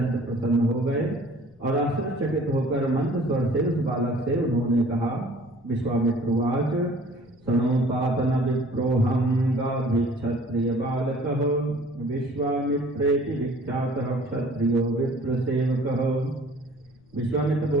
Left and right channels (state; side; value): noise; left; rumble, 29 dB below the sound